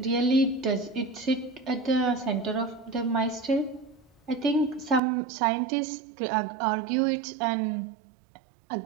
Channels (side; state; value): left; drops out; at 5.0 s